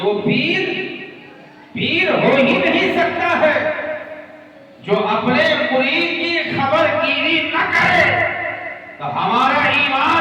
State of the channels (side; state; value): both; identical; correlation 1.00